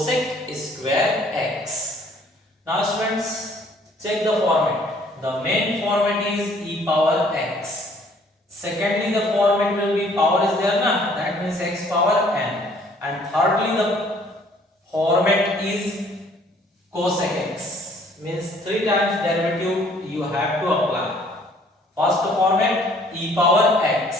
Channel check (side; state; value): both; normal; correlation 0.59